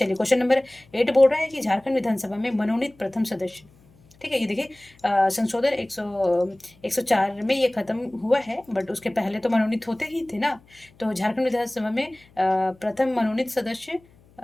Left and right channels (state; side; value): noise; left; hum, 29 dB below the sound